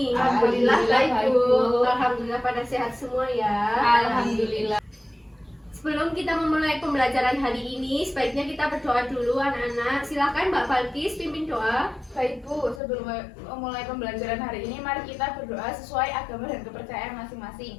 Alhamdulillah baik, Bu. Alhamdulillah pada sehat semua ya. Alhamdulillah. Sebelum kita memulai pembelajaran hari ini, sebaiknya kita berdoa dulu anak-anak. Silakan Mbak Balkis pimpin doa. Baik, Bu, sebelum memulai pembelajaran hari ini, mari kita berdoa sesuai agama dan kepercayaan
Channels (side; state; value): right; drops out; at 12.8 s